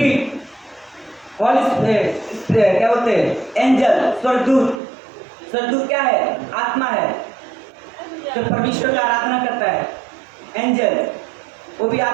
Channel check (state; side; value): drops out; left; at 4.8 s